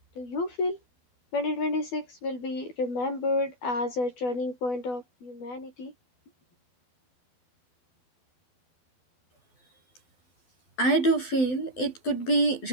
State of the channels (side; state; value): right; late; 12 ms